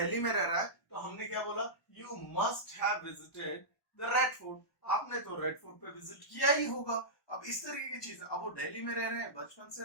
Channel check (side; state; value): right; late; 1.1 ms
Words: में रह रहा है तो हमने क्या बोला, you must have visited the red fort, आपने तो रेड फोर्ट पे विजिट किया ही होगा। अब इस तरीके की चीज, अब वो दिल्ली में रह रहे हैं, बचपन से